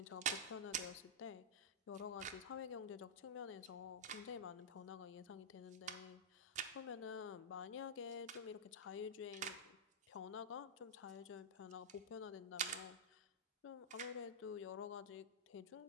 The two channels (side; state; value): both; normal; correlation -0.10